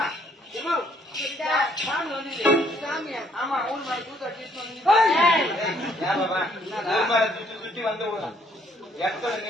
ஏமா சாமி வந்து சாமி ஆமா ஊர் மாதிரி கூத்த சுத்தி வந்து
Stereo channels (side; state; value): both; normal; correlation 0.66